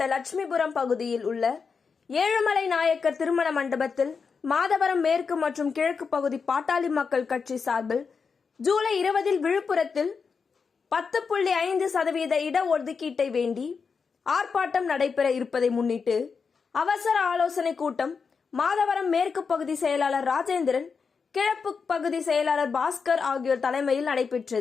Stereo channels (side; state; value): right; quieter; 5.5 dB